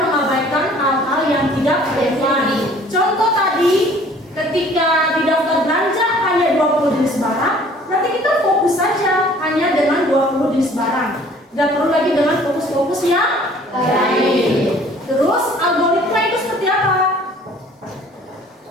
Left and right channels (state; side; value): normal; both; correlation 0.53